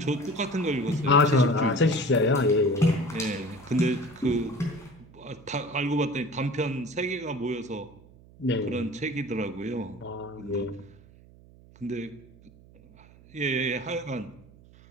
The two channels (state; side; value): noise; right; hum, 24 dB below the sound